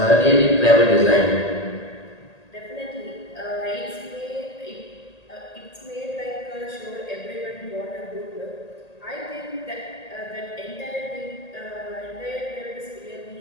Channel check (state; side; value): late; right; 1.8 ms